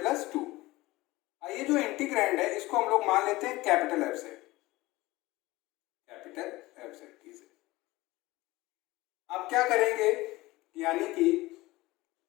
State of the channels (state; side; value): quieter; right; 19.6 dB